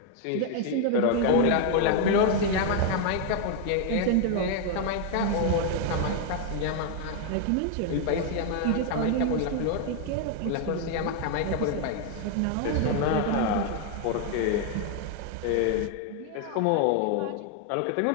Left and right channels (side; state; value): both; different; correlation 0.00